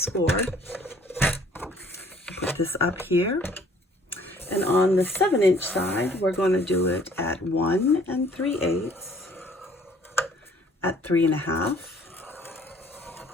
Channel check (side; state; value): both; normal; correlation 0.57